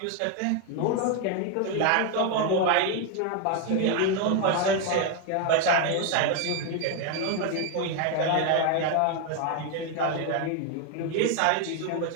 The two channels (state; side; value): different; both; correlation 0.01